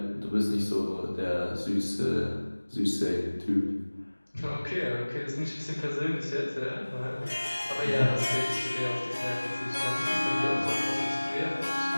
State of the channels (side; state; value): both; inverted; correlation -1.00